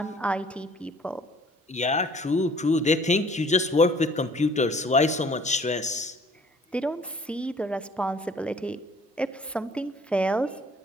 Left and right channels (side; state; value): both; normal; correlation 0.55